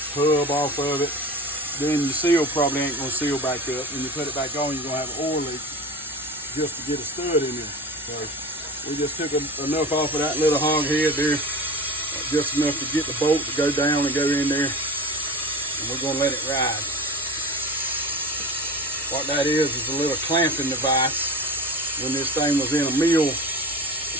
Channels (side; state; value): both; normal; correlation 0.34